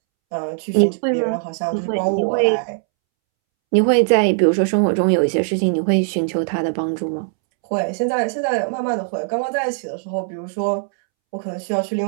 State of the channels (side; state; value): left; silent; 66 dB below the other